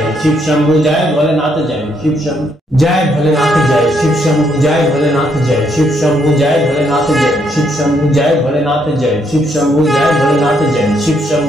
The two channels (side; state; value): both; normal; correlation 0.73